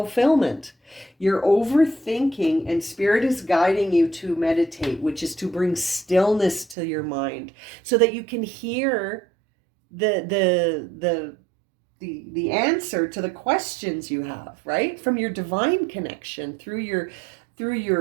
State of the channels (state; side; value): drops out; left; at 6.8 s